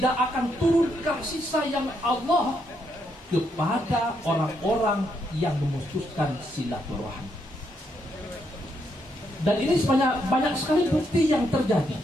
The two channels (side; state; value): both; normal; correlation 0.77